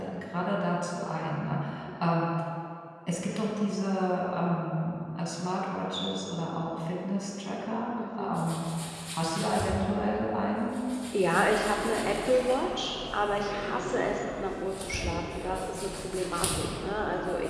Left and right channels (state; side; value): identical; both; correlation 1.00